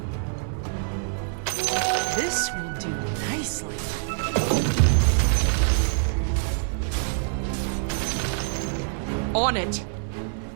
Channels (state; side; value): silent; left; 60 dB below the other